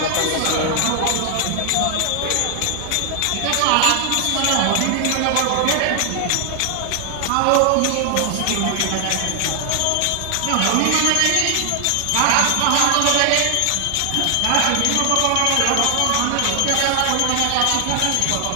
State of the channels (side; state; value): both; different; correlation 0.00